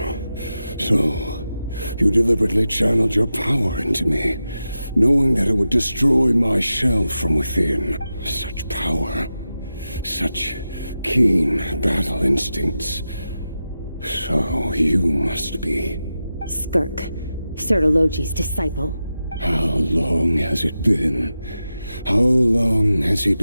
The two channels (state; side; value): inverted; both; correlation -0.91